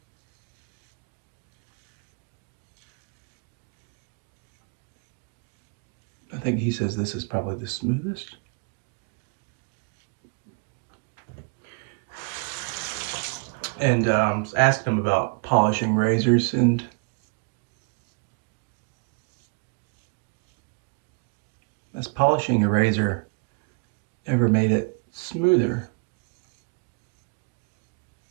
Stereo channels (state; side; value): quieter; left; 36.3 dB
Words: I think he says this is probably the smoothest. And asked him about polishing razors, and has polishing a razor ever made it smoother?